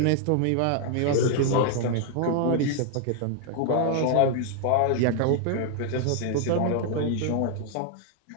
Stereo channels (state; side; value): different; both; correlation 0.00